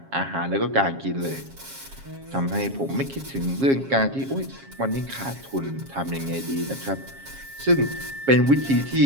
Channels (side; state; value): left; late; 7.4 ms